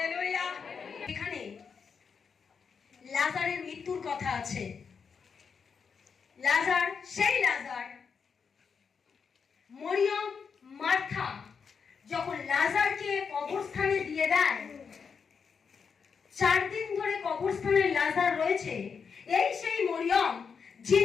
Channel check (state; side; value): quieter; right; 6.0 dB